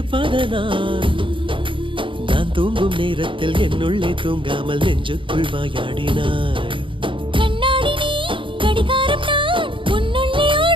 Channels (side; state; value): left; late; 0.25 ms